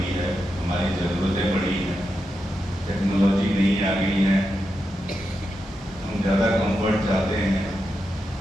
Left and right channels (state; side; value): normal; both; correlation 0.87